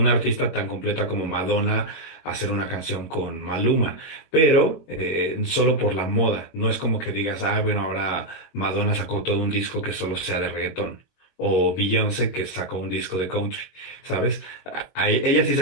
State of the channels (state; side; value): late; right; 22 ms